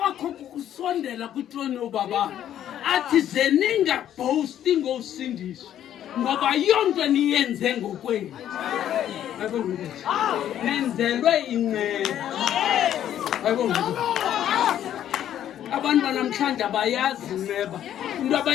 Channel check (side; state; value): right; quieter; 10.9 dB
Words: kukusondela kutroni ubaba athi zeninga boasting ngosindiswa ngoba yonke niyenze ngokwenu nenzelwe inceba. abantu banamhlanje abayazi neba into